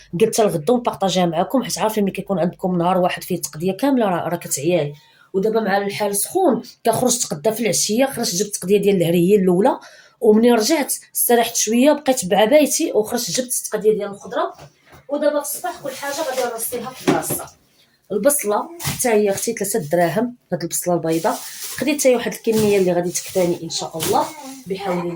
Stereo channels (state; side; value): identical; both; correlation 1.00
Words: قلت الغدا ونبارطاجيها معكم، حيت عارفين ملي كيكون عندكم نهار واحد فيه تقديه كامله راه كتعياي. ودابا مع الحال سخون كنخرج تقدا في العشيه، خرجت جبت التقديه ديال الهري هي الاولى، ومنين رجعت استريحت شويه بقيت بعبايتي وخرجت جبت التقديه ديال الخضره. ودابا في الصباح كل حاجه غادي نرصيها في بلاصتها. البصله حتى هي اختي 3 دراهم، هاد البصله البيضاء خديت حتى واحد الكميه اللي غادي تكفاني ان شاء الله بحول